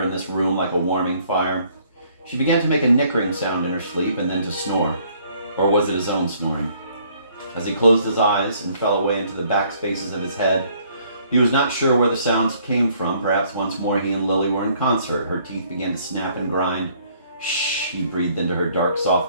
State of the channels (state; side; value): inverted; both; correlation -0.63